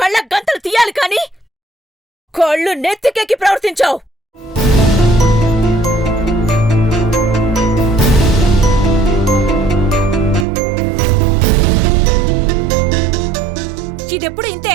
గంతలు తీయాలి కాని కళ్ళు నెత్తికెక్కి ప్రవర్తించావు. ఇదెప్పుడు ఇంతే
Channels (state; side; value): drops out; left; at 10.5 s